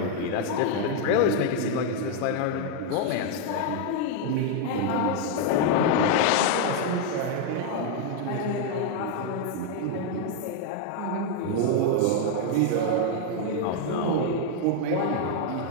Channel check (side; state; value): both; different; correlation 0.00